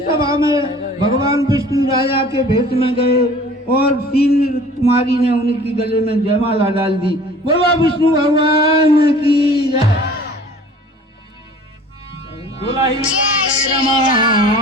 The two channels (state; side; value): normal; both; correlation 0.48